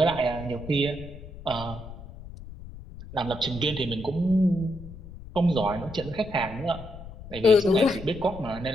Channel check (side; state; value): left; noise; rumble, 14 dB below the sound